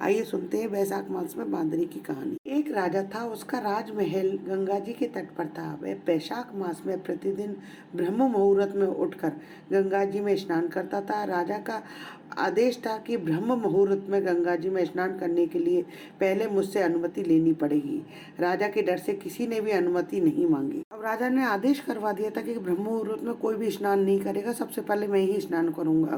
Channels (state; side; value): identical; both; correlation 1.00